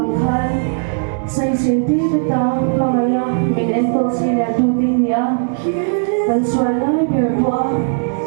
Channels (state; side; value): silent; left; 64 dB below the other